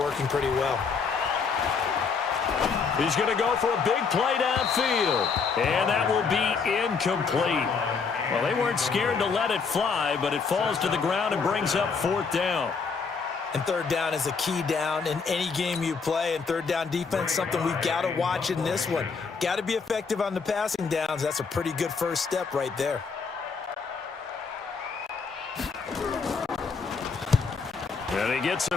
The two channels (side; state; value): right; quieter; 5.3 dB